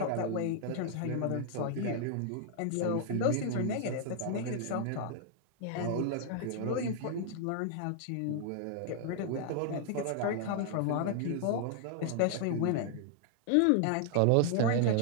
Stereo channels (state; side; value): different; both; correlation 0.00